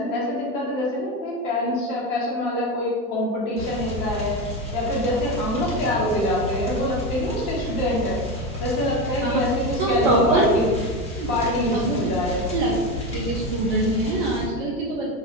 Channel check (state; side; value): normal; both; correlation 0.18